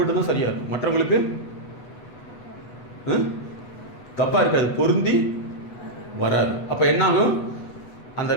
சரியாக இருக்கும், மற்றவங்களுக்கு தப்பாக இருக்காது, பொருந்தி வராது. அப்போ என்னாகும்? அந்த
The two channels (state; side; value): late; right; 8.2 ms